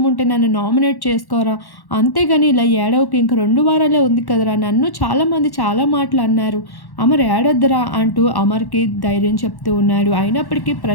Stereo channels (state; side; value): late; right; 1.1 ms